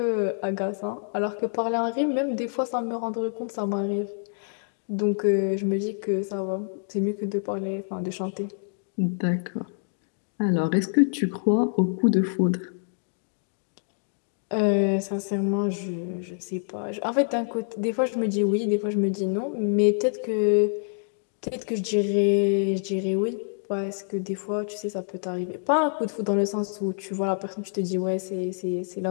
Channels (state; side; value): silent; right; digital silence